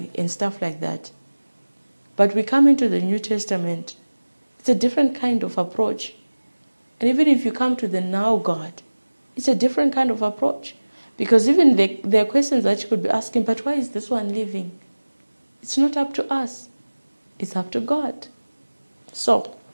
and stuff like that. But we come into the New Testament, it's a different kind of approach. And even if you come to the now God, it's a different kind of approach. Because even there are questions that you could be asking, but why is this one living? It's not up to us. It's up to God. So,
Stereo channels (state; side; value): inverted; both; correlation -1.00